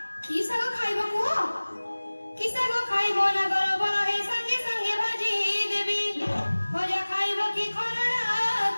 की साग खाइबो कुआ की साग खाइबो ना गरब रहे संगे संगे भाजी देबी भजा खाइबो की खरड़ा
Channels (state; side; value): inverted; both; correlation -1.00